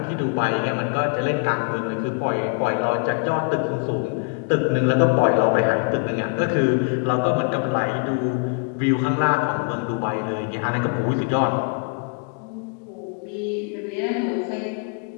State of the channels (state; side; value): quieter; right; 38.7 dB